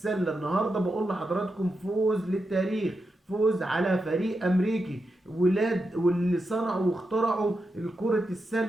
النهاردة بقول لحضراتكم فوز للتاريخ، فوز على فريق أمريكي ولاد واللي صنعوا واخترعوا الكرة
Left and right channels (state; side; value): normal; both; correlation 0.87